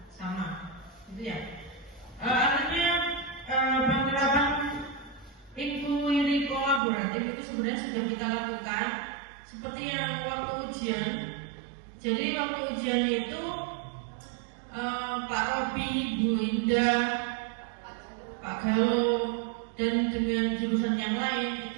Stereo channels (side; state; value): left; drops out; at 6.8 s